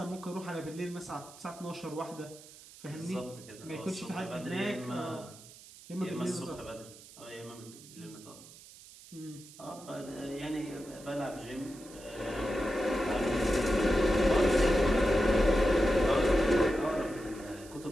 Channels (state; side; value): noise; right; hiss, 19 dB below the sound